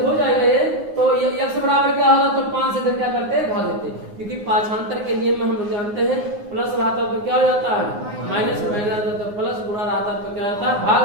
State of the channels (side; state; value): left; late; 9.7 ms